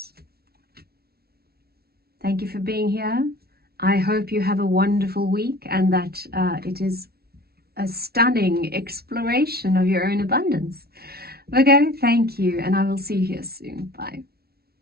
Thank you for being here. I hope you have a wonderful week and that it is a stunning exploration of your own abundance. Virgo, thank you, and I will see you here soon. Bye.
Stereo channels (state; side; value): late; left; 0.45 ms